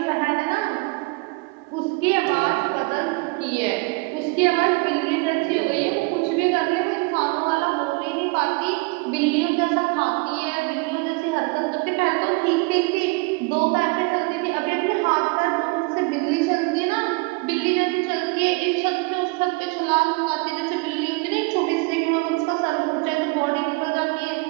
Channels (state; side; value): quieter; left; 27.7 dB